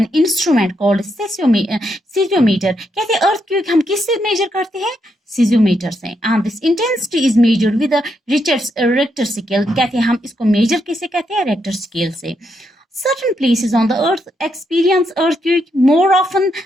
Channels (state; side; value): normal; both; correlation 0.80